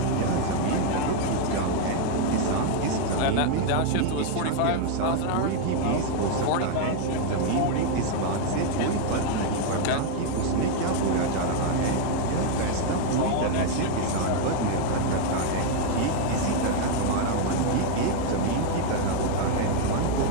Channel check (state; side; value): different; both; correlation 0.01